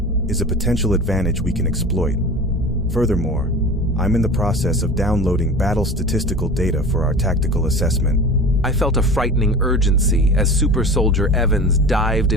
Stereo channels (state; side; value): normal; both; correlation 0.35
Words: is a potential advantage we can exploit. Furthermore, I'm in the process of downloading battle statistical data for our tactical assessment. I felt a frightening urgency as Super Soldier Evans dived